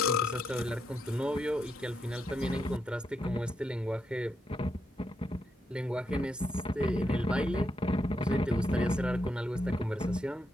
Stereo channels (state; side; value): normal; both; correlation 0.81